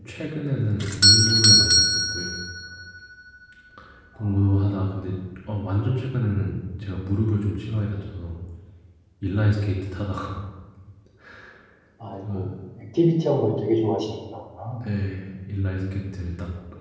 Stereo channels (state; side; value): identical; both; correlation 1.00